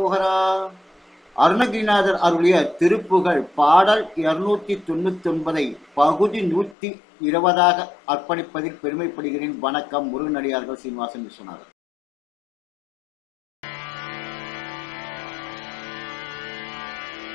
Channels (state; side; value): drops out; right; at 6.8 s